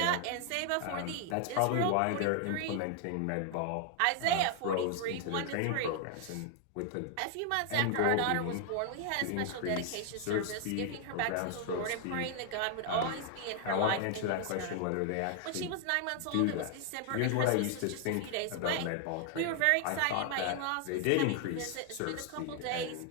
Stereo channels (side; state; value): both; different; correlation 0.00